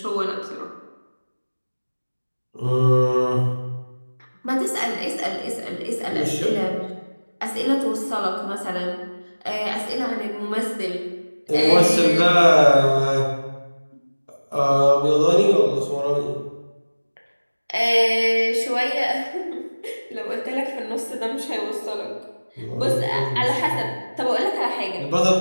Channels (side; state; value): both; inverted; correlation -1.00